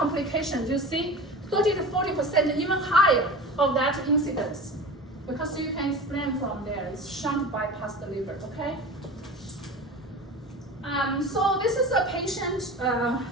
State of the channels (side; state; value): both; normal; correlation 0.33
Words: you see 30 to 40%, even higher of that incidence. Because you can explain from there, it's shunt bypass the liver, okay? So this is a patient